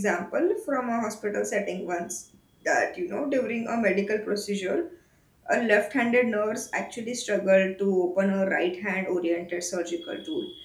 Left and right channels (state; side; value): identical; both; correlation 1.00